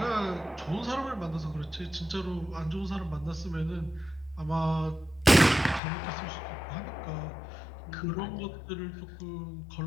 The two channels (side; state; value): right; drops out; at 5.8 s